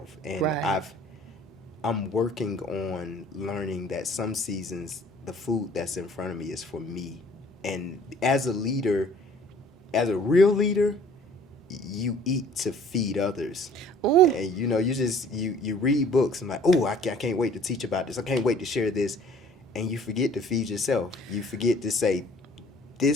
And Right. I'm working on learning that some seasons the food that's in front of me is for me. And as a leader, as a real leader, you eat to feed others. Ooh. And you read books and like, oh, I can't wait to teach about this. I can't wait to share this. And you forget to feed yourself. You forget to say,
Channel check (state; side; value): normal; both; correlation 0.53